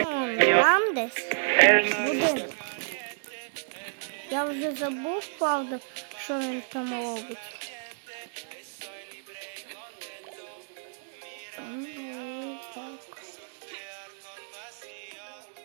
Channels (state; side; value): silent; left; digital silence